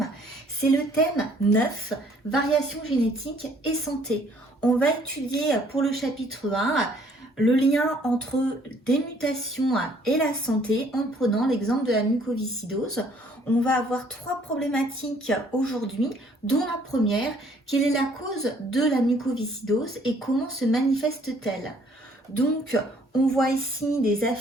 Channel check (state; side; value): normal; both; correlation 0.61